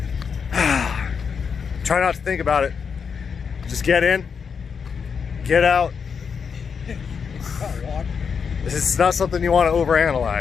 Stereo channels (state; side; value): quieter; right; 6.2 dB